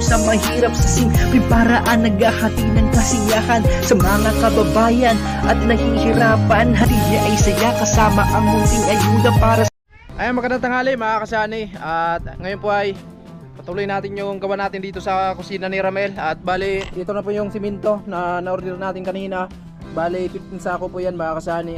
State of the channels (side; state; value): both; identical; correlation 1.00